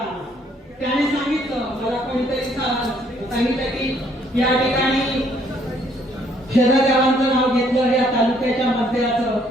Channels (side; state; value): both; normal; correlation 0.66